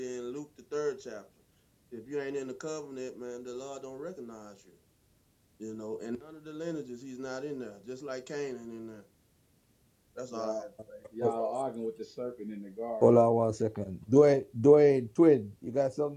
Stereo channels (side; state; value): both; identical; correlation 1.00